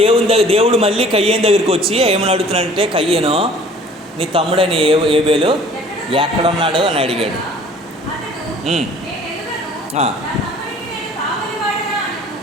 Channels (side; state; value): both; normal; correlation 0.51